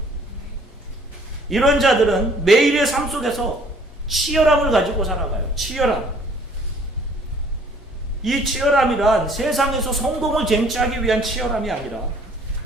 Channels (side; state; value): both; normal; correlation 0.58